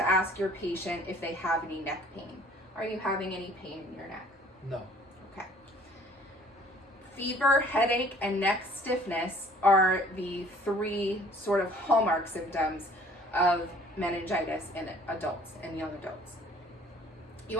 ask your patient if they have any neck pain. Are you having any pain in your neck? No. Okay. Fever, headache, and neck stiffness are the three sort of hallmark symptoms of meningitis in adults and young adults. You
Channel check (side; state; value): both; normal; correlation 0.54